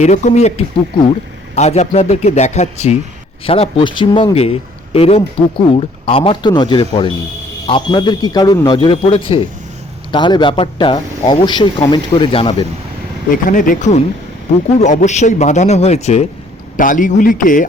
এরকমই একটি পুকুর আজ আপনাদেরকে দেখাচ্ছি। সারা পশ্চিমবঙ্গে এরম পুকুর আমার তো নজরে পড়েনি। আপনাদের কি কারোর নজরে পড়েছে? তাহলে ব্যাপারটা অবশ্যই কমেন্ট করে জানাবেন। এখানে দেখুন, পুকুর অবশ্যই বাঁধানো হয়েছে, টালিগুলিকে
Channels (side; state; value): both; normal; correlation 0.60